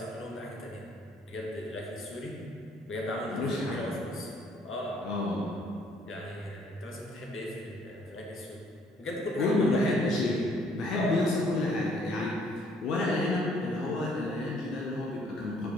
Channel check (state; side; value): normal; both; correlation 0.63